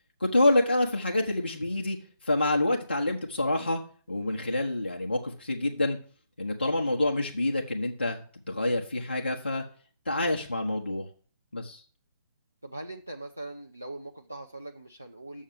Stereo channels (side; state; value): both; inverted; correlation -0.86